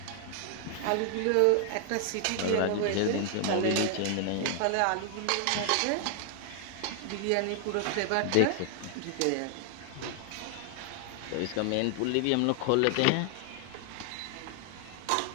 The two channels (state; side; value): different; both; correlation 0.00